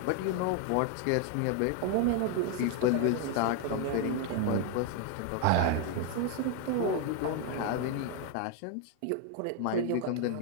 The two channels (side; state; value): both; different; correlation 0.01